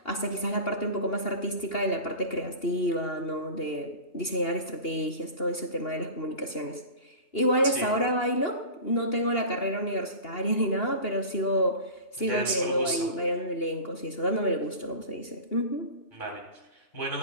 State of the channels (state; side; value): late; right; 2.8 ms